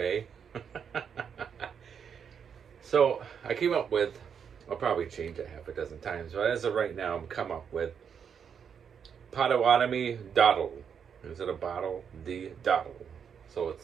So I came up with, I'll probably change it half a dozen times, but as of right now, I'm come up with Potawatomi Dottle. Instead of bottle, the Dottle. So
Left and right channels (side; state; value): left; quieter; 7.3 dB